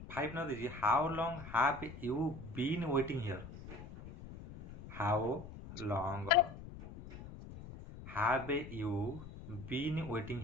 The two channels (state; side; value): noise; left; rumble, 13 dB below the sound